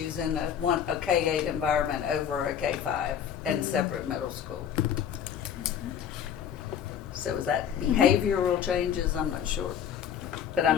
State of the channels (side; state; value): right; quieter; 8.8 dB